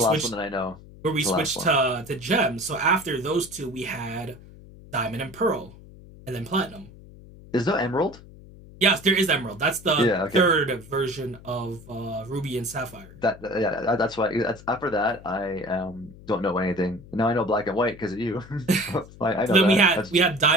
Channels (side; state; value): left; noise; hum, 19 dB below the sound